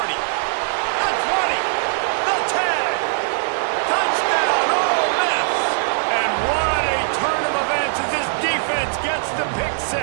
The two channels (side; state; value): left; silent; digital silence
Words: 20. The 10. Touchdown, Ole Miss. And what a turn of events as this defense gets the pick